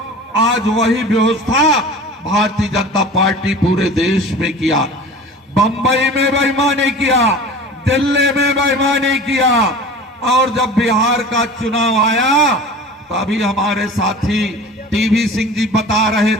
आज वही व्यवस्था भारतीय जनता पार्टी पूरे देश में किया। बंबई में बेईमानी किया, दिल्ली में बेईमानी किया, और जब बिहार का चुनाव आया तभी हमारे साथी टीवी सिंह जी बता रहे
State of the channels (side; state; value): both; normal; correlation 0.38